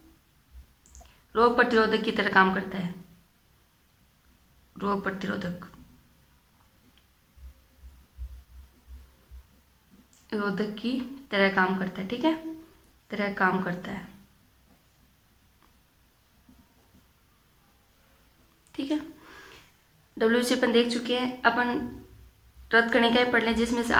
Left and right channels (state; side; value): identical; both; correlation 1.00